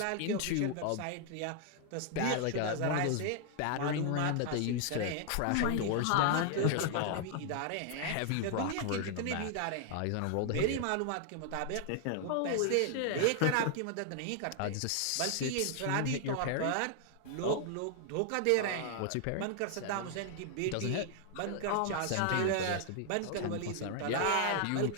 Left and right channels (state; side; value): different; both; correlation 0.00